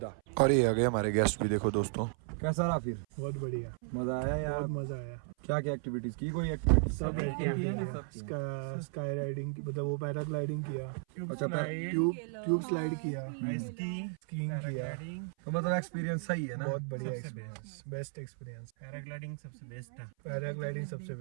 और ये आ गए हमारे गेस्ट भी, देखो दोस्तों। कैसा रहा फिर? बहुत बढ़िया, मजा आया यार? बहुत मजा आया। क्या क्या एक्टिविटीज की? कोई एक्टिविटी? सब स्काई राइडिंग, मतलब वो पैराग्लाइडिंग किया, अच्छा ट्यूब स्लाइड किया, स्कीइंग किया। तो मतलब एक्सपीरियंस सही है ना? बहुत बढ़िया एक्सपीरियंस, बेस्ट एक्सपीरियंस। पैराग्लाइडिंग सबसे बेस्ट है। पैराग्लाइडिंग सबसे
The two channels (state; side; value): silent; left; 55 dB below the other